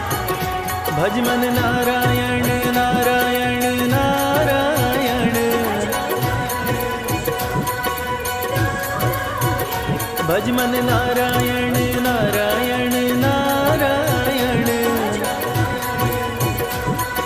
भजमन नारायण नारायण नारायण भजमन नारायण नारायण नारायण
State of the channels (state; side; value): identical; both; correlation 1.00